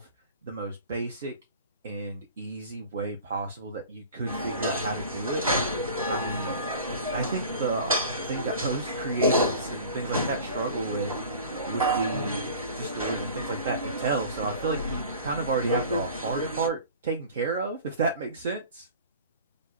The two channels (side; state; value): both; inverted; correlation -0.41